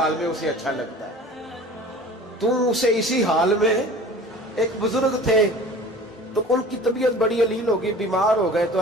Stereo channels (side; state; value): both; normal; correlation 0.42